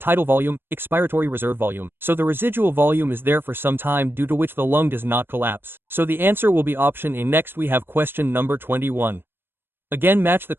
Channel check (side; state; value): left; late; 0.10 ms